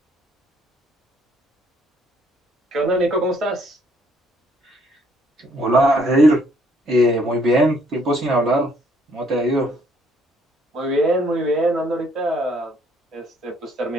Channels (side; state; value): both; normal; correlation 0.66